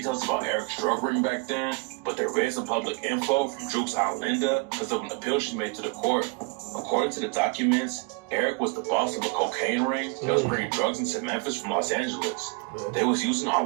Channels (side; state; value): left; quieter; 28.0 dB